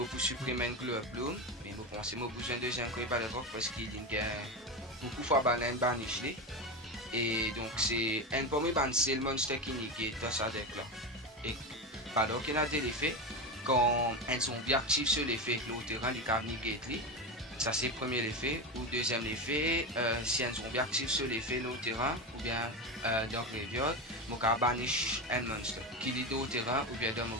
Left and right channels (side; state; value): both; normal; correlation 0.18